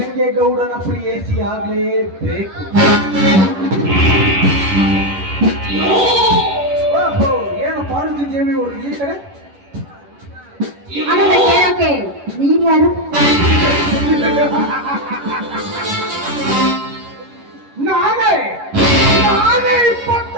ಪ್ರಿಯಸಿ ಆಗ್ಲೇಬೇಕು. ಓಹೋ, ಏನು ಪಾರ್ವತಿ ದೇವಿ ಅವರು ಈ ಕಡೆ? ನೀನ್ಯಾರು? ನಾನೇ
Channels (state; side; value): late; left; 11 ms